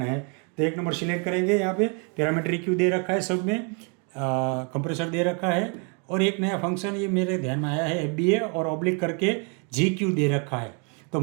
है। तो 1 नंबर सिलेक्ट करेंगे, यहाँ पे पैरामीटर EQ दे रखा है, सब में कंप्रेसर दे रखा है, और एक नया फंक्शन ये मेरे ध्यान में आया है FBA और ऑब्लिक करके GQ दे रखा है। तो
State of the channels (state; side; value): quieter; left; 37.2 dB